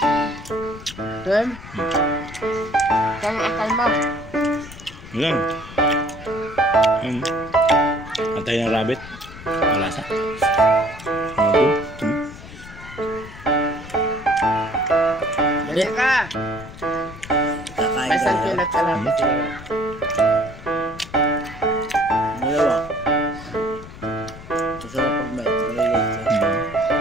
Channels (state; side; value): noise; left; rumble, 15 dB below the sound